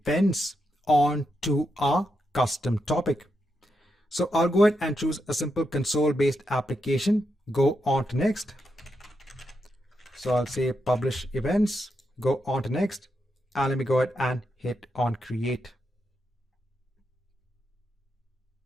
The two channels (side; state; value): both; normal; correlation 0.84